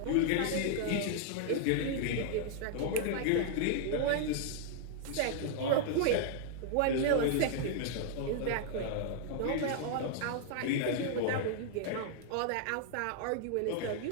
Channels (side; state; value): both; different; correlation -0.01